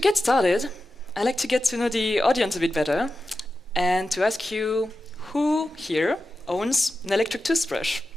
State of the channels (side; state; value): both; normal; correlation 0.92